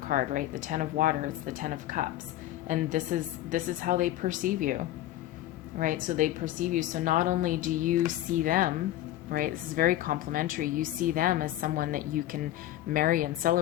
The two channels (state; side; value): quieter; right; 14.0 dB